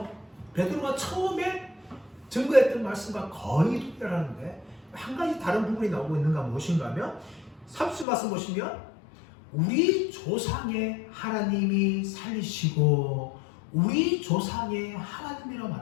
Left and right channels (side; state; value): right; drops out; at 8.1 s